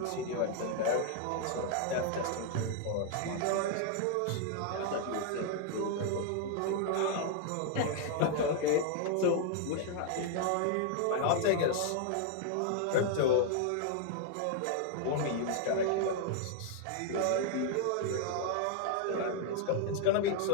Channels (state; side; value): different; both; correlation 0.00